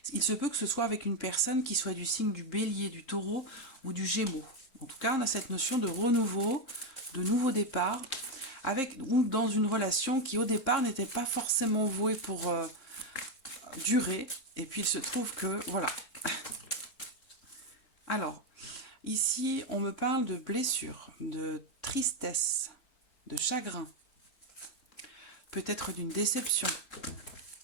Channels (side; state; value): right; late; 3.7 ms